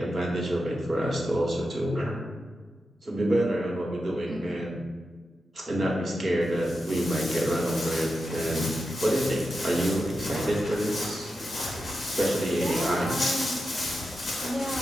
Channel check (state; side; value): normal; both; correlation 0.89